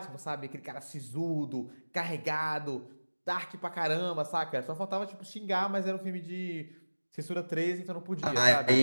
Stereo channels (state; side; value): inverted; both; correlation -1.00